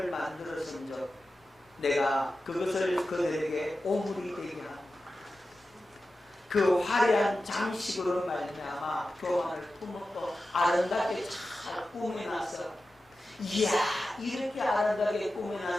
만들었은즉 내가 그것을 그들에게 오물이 되게 하노라. 그 화려한 장식으로 말미암아 교만을 품었고 아름답게 잘 꾸며놨어. 이야, 이렇게 아름답게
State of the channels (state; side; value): normal; both; correlation 0.93